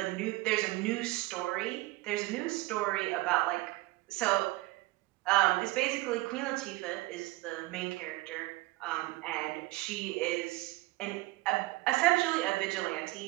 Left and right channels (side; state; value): left; quieter; 20.4 dB